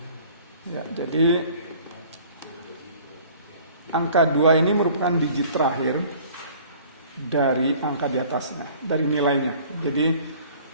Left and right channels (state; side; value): inverted; both; correlation -0.51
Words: Ya, jadi angka 2 ini merupakan digit terakhir dari angka di atasnya, dari nilainya. Jadi